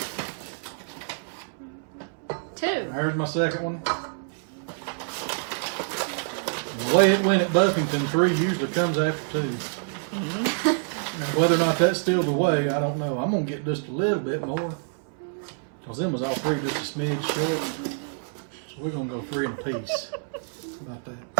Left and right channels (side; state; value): left; silent; 60 dB below the other